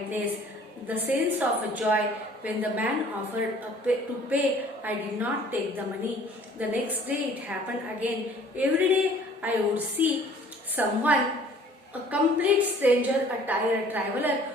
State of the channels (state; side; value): normal; both; correlation 0.53